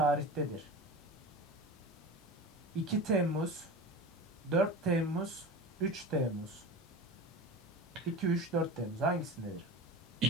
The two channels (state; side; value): normal; both; correlation 0.31